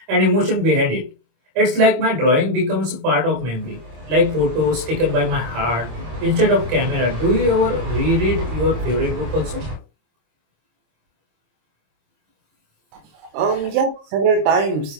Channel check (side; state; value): left; late; 26 ms